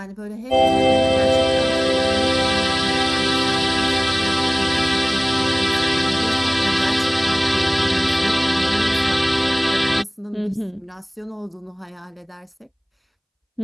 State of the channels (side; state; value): both; identical; correlation 1.00